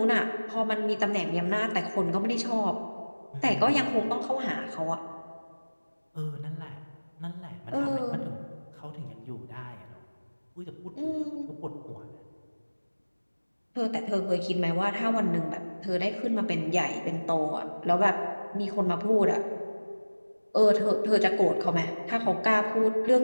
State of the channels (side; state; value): both; inverted; correlation -1.00